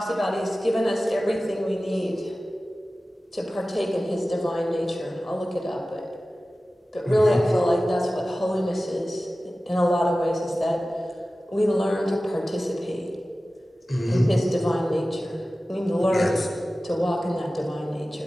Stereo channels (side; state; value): both; normal; correlation 0.96